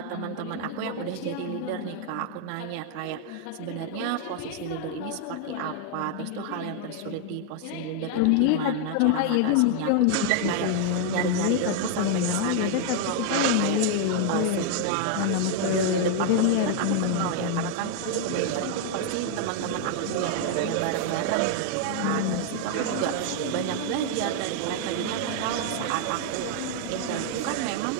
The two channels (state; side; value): different; both; correlation 0.00